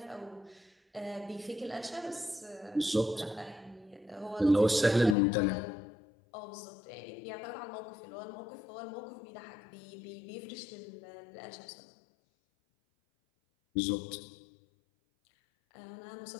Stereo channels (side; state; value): right; drops out; at 5.2 s